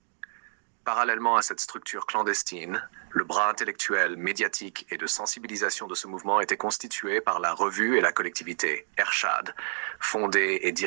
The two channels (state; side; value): silent; left; digital silence